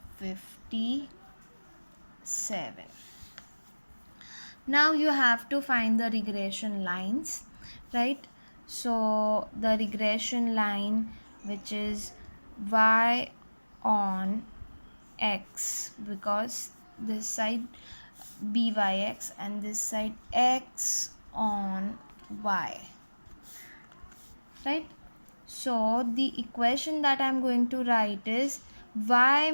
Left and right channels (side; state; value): both; inverted; correlation -1.00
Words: Now you have to find the regression lines, right? So the regression line, which is y on x, because this side byx and this side x on y, right? So the equation that I'm going to write is y